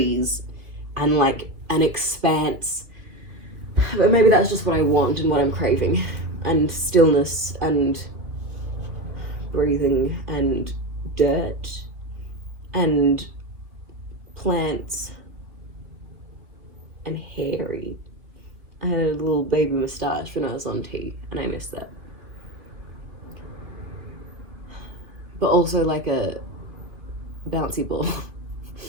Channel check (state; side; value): late; left; 2.9 ms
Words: And like an expanse. But maybe that's just what I want and what I'm craving. And stillness and breathing and dirt and plants and hairy. I had a little baby moustache when I was on tea and I missed that. But also like a bouncy ball